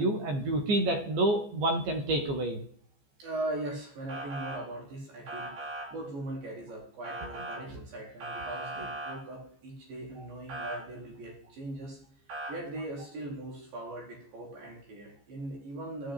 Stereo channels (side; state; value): left; late; 14 ms